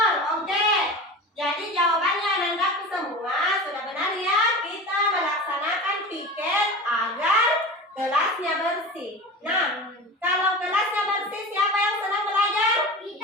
Oke. Jadi jawabannya anandaku semua sudah benar ya. Kita melaksanakan piket agar kelasnya bersih. Nah, kalau kelasnya bersih, siapa yang senang belajar?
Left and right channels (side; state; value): both; normal; correlation 0.31